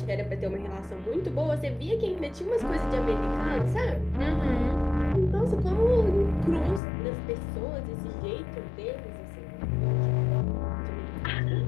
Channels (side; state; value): right; drops out; at 6.8 s